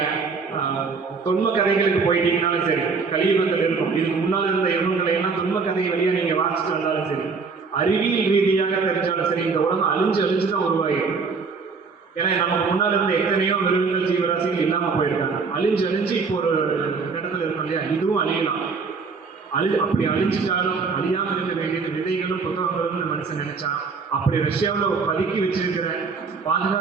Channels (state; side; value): quieter; left; 4.9 dB